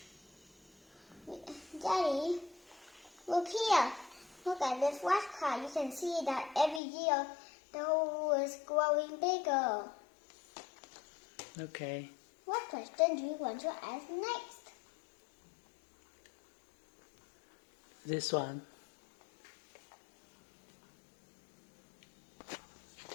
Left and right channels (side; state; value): right; drops out; at 6.8 s